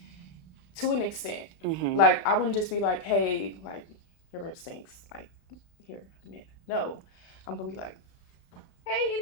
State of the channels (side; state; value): right; late; 34 ms